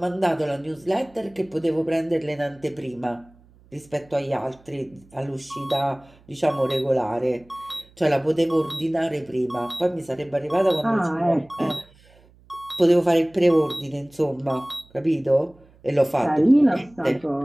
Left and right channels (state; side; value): noise; right; hum, 28 dB below the sound